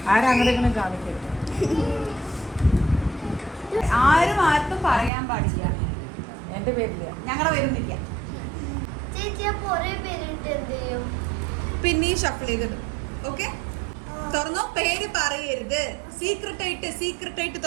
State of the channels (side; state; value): left; drops out; at 5.1 s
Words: ആരും ആർക്കും പറയാൻ പാടില്ല. എന്റെ പേരില്ല, ഞങ്ങളുടെ പേരൊന്നില്ല. പിന്നെ ഷഫിൾ ചെയ്തിടും. ഓക്കെ, തുറന്നോ. പേര് പറയരുത്. സീക്രട്ട്